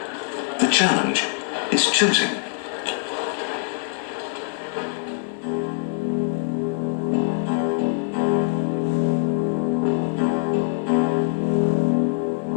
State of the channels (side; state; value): right; silent; digital silence